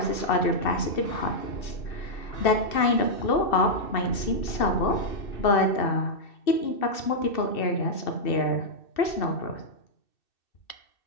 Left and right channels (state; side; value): late; right; 2.6 ms